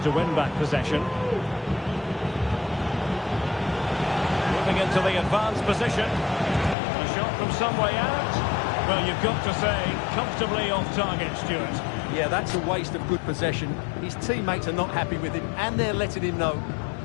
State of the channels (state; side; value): drops out; right; at 6.8 s